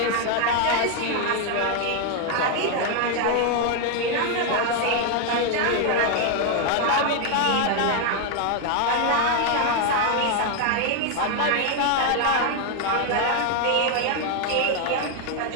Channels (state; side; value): different; both; correlation 0.01